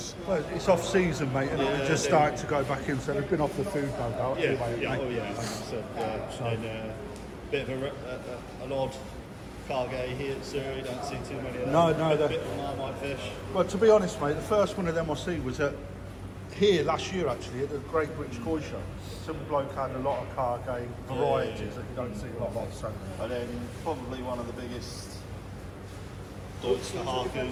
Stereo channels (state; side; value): identical; both; correlation 1.00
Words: Well, it's off season, mate, and Yeah, it's just they- starting to go back in, so they've been off the food no doubt. Yeah, anyway, yeah, mate. oh yeah. So, and a bit of an odd cargay here at Surrey, don't see too many of them. No, a they're- bit of a marmite fish. Well, to be honest, mate, the first one of them I see was here last year, actually, at the Great British Koi Show. Some bloke had a lot of cargay varieties that you don't see a lot of, so. And then probably one of the biggest Deutsche